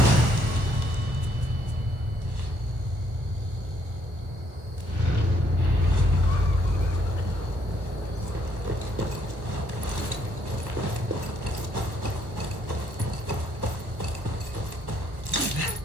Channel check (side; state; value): left; late; 1.2 ms